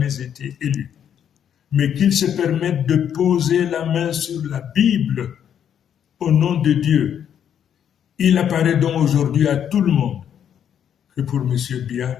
été élu. Mais qu'il se permette de poser la main sur la Bible au nom de Dieu. Il apparaît donc aujourd'hui à tout le monde que pour M.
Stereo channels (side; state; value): right; quieter; 9.1 dB